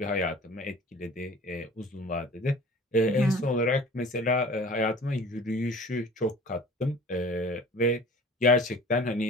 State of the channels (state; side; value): normal; both; correlation 0.44